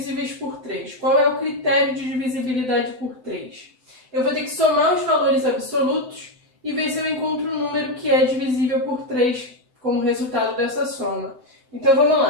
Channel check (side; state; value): left; late; 7.8 ms